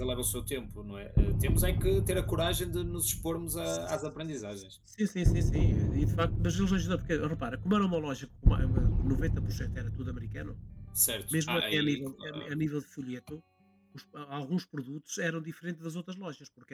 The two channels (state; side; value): identical; both; correlation 1.00